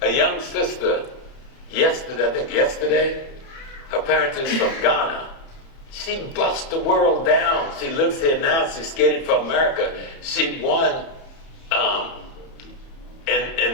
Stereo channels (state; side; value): late; right; 30 ms